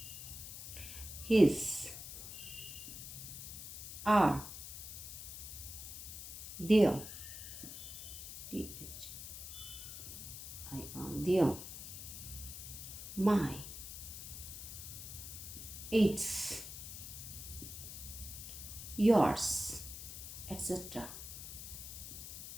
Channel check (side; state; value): left; noise; hiss, 9 dB below the sound